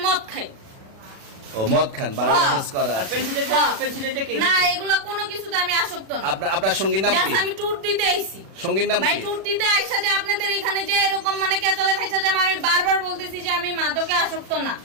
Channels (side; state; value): left; late; 36 ms